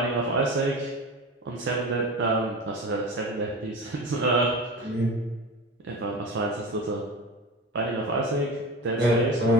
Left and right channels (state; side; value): normal; both; correlation 0.29